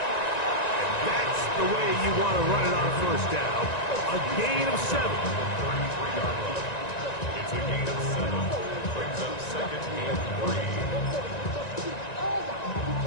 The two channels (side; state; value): right; late; 1.9 ms